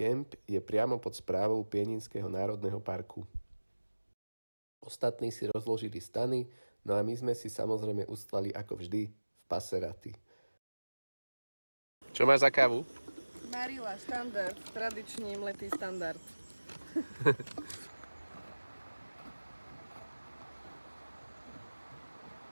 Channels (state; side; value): inverted; both; correlation -1.00